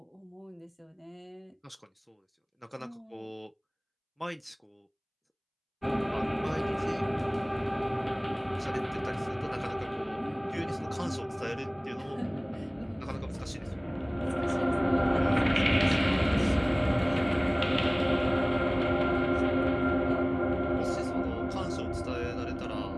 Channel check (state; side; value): identical; both; correlation 1.00